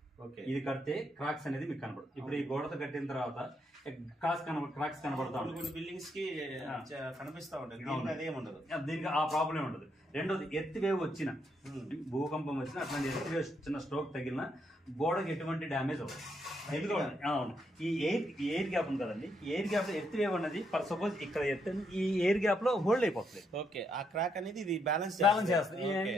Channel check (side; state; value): both; normal; correlation 0.77